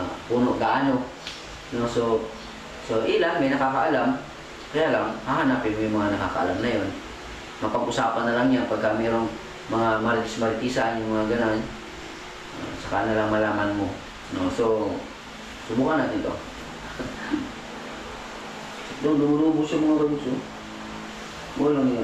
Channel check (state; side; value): identical; both; correlation 1.00